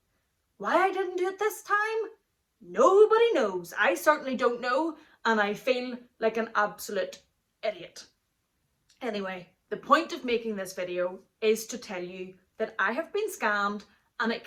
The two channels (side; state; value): both; identical; correlation 1.00